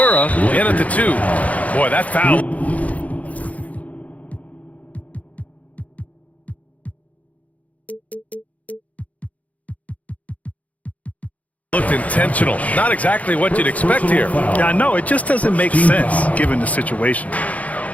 in at the 2. Boy, that foul. Looked intentional. Not exactly what you'd expect here. Yeah, I know. It just doesn't make sense given the situation.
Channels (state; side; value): late; right; 0.070 ms